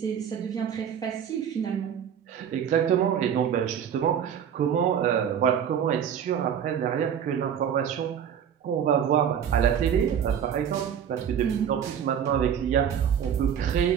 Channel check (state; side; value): quieter; left; 8.5 dB